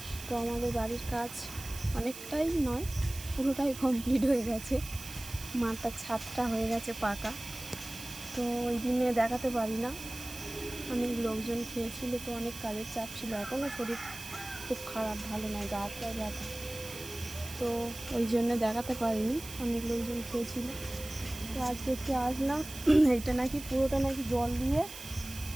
তো আমাদের বাড়ির কাজ অনেকটাই নয়, পুরোটাই কমপ্লিট হয়ে গেছে। মাথার ছাদটা হয়ে গেছে পাকা। তো ওই দিনে দেখাতে পারি না, অনেক লোকজন খেয়েছিল, তো অনেক কাজের চাপ ছিল। এখনও শরীর খুব খারাপ, ভালো নয়, গা হাত পায়ে ব্যথা। তো ওই জন্যে দেখাতে পারিনি, অনেক লোকজন খেয়েছিল। তো আজকে একটু আসলাম। এইটা নাকি পুরোটা নাকি জল দিয়ে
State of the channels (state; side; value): noise; right; hiss, 12 dB below the sound